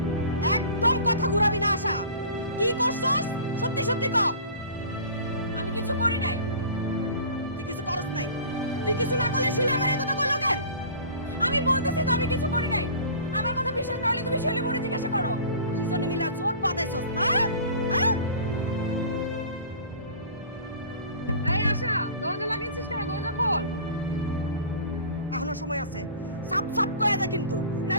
একদম কথা ঘুরাবি না আশা। কি করছস সত্যি সত্যি ক। আমি কিছু করি নাই। তুই কিছু করস নাই? তুই কিছু না করলে শিউলি আমারে এই কথা কইলো কেন? আমি বলতেছি তো আমি কিছু করি নাই। আমার কথা বিশ্বাস না হলে তুমি শিউলি বুড়ি জিজ্ঞাসা করো। দুইজনে মিলা জোট বাঁধাইছস না? হ্যাঁ? এই আশা, দরজা লাগিয়েছিস কেন? দরজা খোল। এখনো সময় আছে, সাপ সাপ কয়ে দে কিন্তু,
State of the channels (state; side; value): inverted; both; correlation -0.41